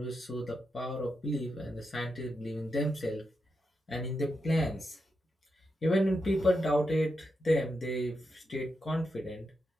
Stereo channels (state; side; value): normal; both; correlation 0.86